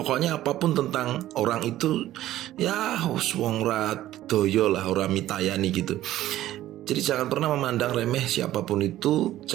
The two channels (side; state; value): left; quieter; 14.1 dB